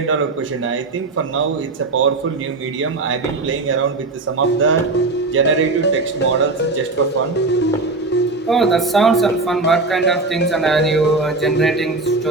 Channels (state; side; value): quieter; left; 3.4 dB